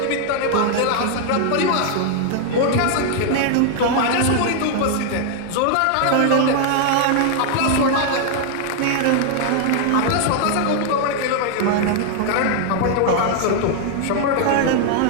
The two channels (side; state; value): both; different; correlation 0.00